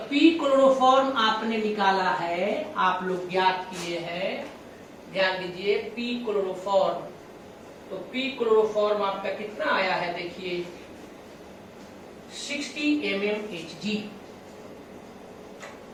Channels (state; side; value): identical; both; correlation 1.00